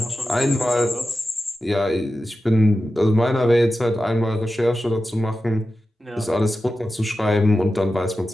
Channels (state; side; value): normal; both; correlation 0.92